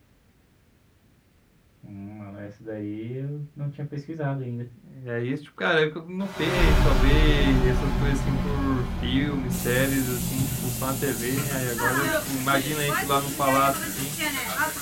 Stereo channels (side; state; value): both; identical; correlation 1.00